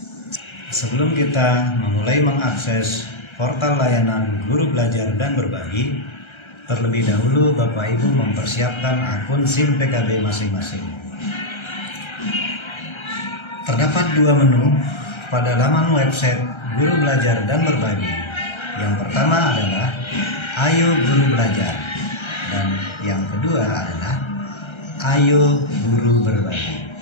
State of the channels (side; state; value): right; late; 1.3 ms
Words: Sebelum kita memulai mengakses portal layanan Guru Belajar dan Berbagi, terlebih dahulu Bapak Ibu mempersiapkan akun SIM PKB masing-masing. Terdapat dua menu pada laman website Guru Belajar dan Berbagi. Yang pertama adalah Ayo Guru Belajar, dan yang kedua adalah Ayo Guru Berbagi.